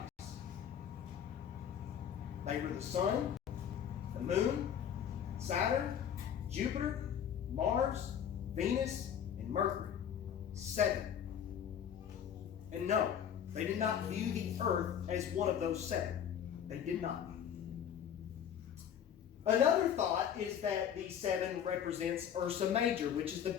They were the sun, the moon, Saturn, Jupiter, Mars, Venus, and Mercury. 7. And no, they did not view the earth as one of those 7. They did not. Another thought is that the 7 represents Ursa Major, which is the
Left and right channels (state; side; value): quieter; right; 8.8 dB